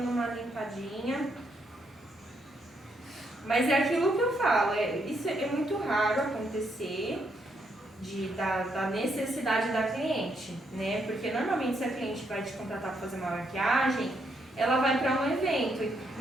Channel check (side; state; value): both; normal; correlation 0.76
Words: uma limpadinha passadinha. Mas é aquilo que eu falo, isso é muito raro acontecer da necessidade da cliente, né? Porque normalmente se a cliente vai te contratar para fazer uma maquiagem, ela vai para um evento,